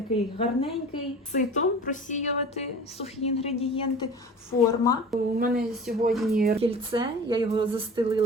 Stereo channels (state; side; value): normal; both; correlation 0.39